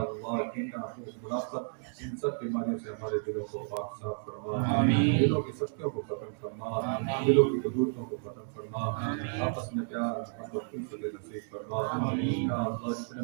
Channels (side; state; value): left; silent; digital silence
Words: کینہ منافقت ان سب بیماریوں سے ہمارے دلوں کو پاک صاف فرما، دلوں کی سختیوں کو ختم فرما، دلوں کی قدورتوں کو ختم فرما، آپس میں پیار محبت الفت نصیب فرما، یا اللہ جتنے